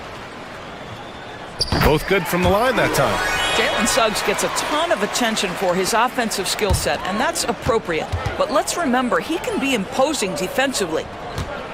Both good from the line that time. Jalen Suggs gets a ton of attention for his offensive skill set, and that's appropriate. But let's remember, he can be imposing defensively.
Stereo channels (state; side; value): identical; both; correlation 1.00